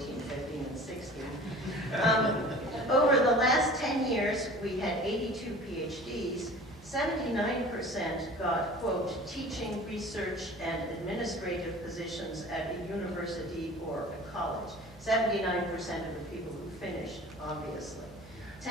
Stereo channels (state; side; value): normal; both; correlation 0.43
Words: 15, and 16. Over the last 10 years, we had 82 PhDs. 79% got, quote, teaching, research, and administrative positions at a university or a college. 79% of the people who finished, obviously.